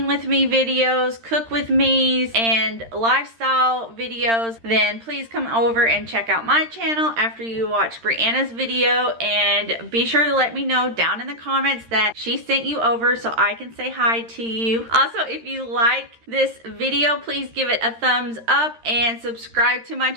with me videos, cook with me's, and lifestyle videos, then please come over and check out my channel after you watch Brianna's video, and be sure to let me know down in the comments that she sent you over so I can say hi to you. Also, if you like this video, please give it a thumbs up and subscribe to my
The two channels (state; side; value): late; left; 13 ms